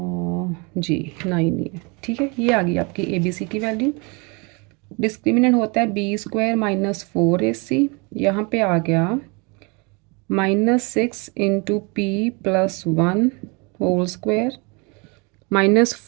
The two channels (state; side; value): quieter; left; 30.0 dB